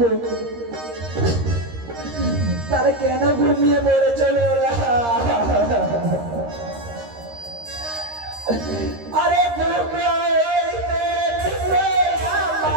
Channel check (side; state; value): left; late; 13 ms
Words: তারা কেন ঘুমিয়ে পড়ে চলে ওরা? আরে